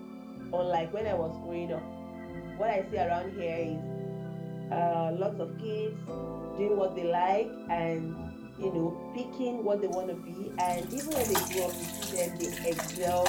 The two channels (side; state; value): both; identical; correlation 1.00